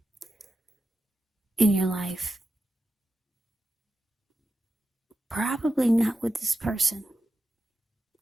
in your life. Probably not with this person.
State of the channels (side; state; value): both; normal; correlation 0.91